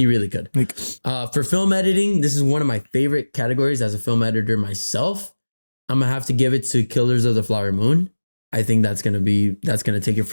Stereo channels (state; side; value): inverted; both; correlation -1.00